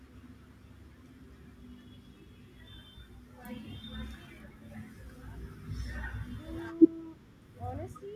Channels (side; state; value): both; identical; correlation 1.00